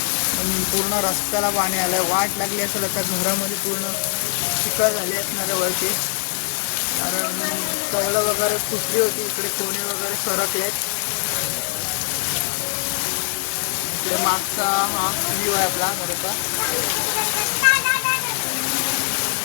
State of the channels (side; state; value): right; silent; digital silence